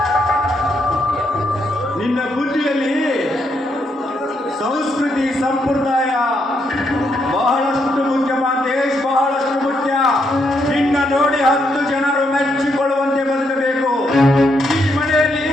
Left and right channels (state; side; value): normal; both; correlation 0.78